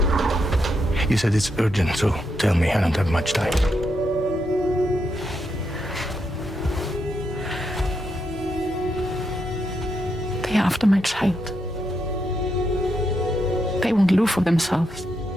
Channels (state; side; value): normal; both; correlation 0.81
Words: You said it's urgent, so tell me, I don't have much time. They're after my child. They want Lou for themselves.